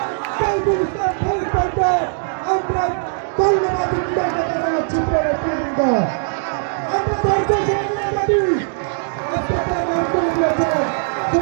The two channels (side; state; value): left; silent; digital silence